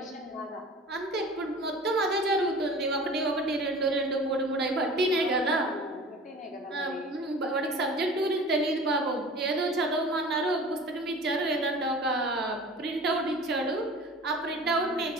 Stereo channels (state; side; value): normal; both; correlation 0.41